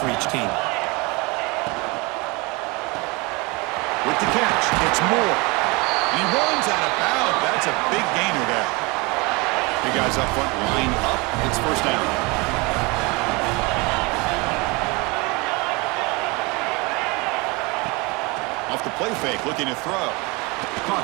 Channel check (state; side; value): quieter; left; 26.5 dB